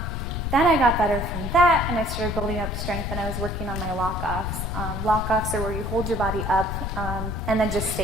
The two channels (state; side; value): noise; left; rumble, 3 dB below the sound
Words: Then I got better from that, and I started building up strength, and I was working on my lock-offs. Lock-offs are where you hold your body up and then just